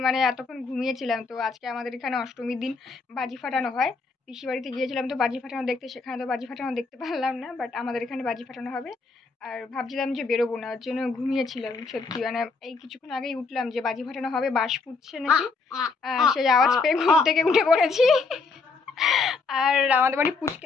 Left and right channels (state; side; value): quieter; right; 4.3 dB